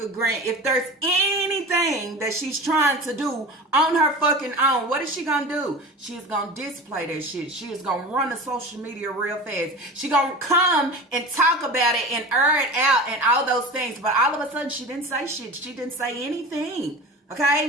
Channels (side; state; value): both; normal; correlation 0.32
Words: Grant, if there's anything that she's trying to do on her fucking own, what is she gonna do? She is gonna display that shit. She is gonna run the social media real fast. She gonna come and talk about it and air it out and all those things. But all of a sudden, she didn't say shit. She didn't say anything.